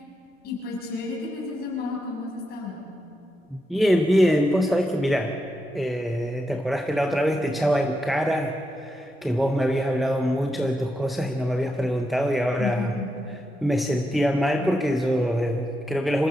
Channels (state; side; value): normal; both; correlation 0.85